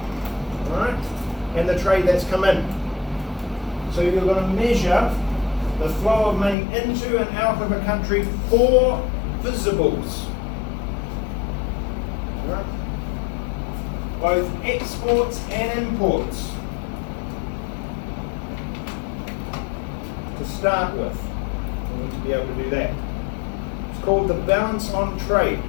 right, and the trade that's come in. So you're going to measure the flow of money into and out of a country for visibles, right? Both exports and imports. To start with, we need to be able to do that. It's called the balance on trade,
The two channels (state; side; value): drops out; right; at 6.6 s